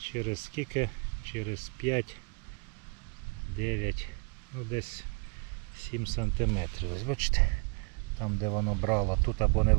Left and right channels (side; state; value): left; quieter; 33.8 dB